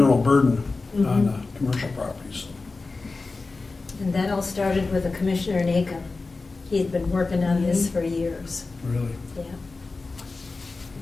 burden on commercial properties. And that all started with a commissioner in Aiken. He had been working on this for years. Really? Yeah.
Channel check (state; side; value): quieter; right; 3.8 dB